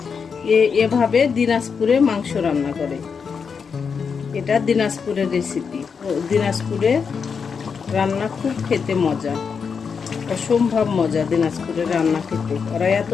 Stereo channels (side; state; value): right; quieter; 6.0 dB